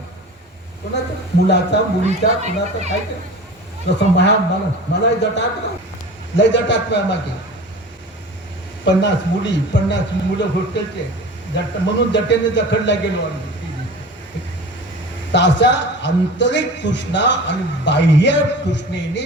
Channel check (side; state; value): both; normal; correlation 0.37